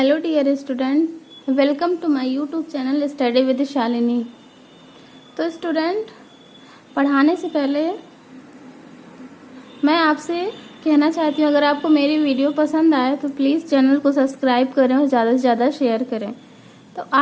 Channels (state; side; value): identical; both; correlation 1.00